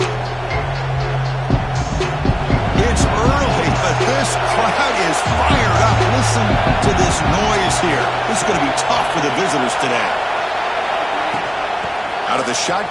It's early, but this crowd is fired up. Listen to this noise here. This is going to be tough for the visitors today. Out of the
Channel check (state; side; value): identical; both; correlation 1.00